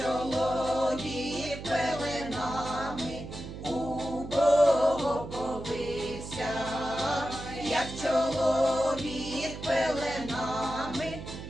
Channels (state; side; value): noise; right; hum, 10 dB below the sound